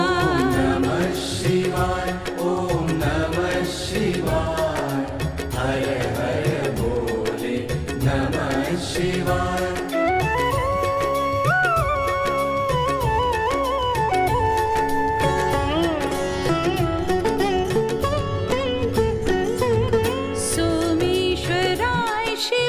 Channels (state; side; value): identical; both; correlation 1.00